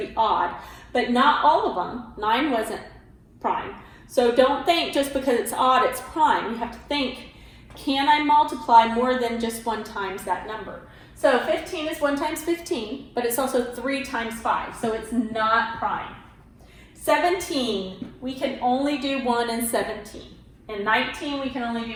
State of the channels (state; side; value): identical; both; correlation 1.00